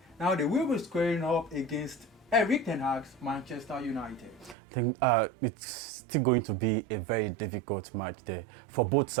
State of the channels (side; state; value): left; drops out; at 4.5 s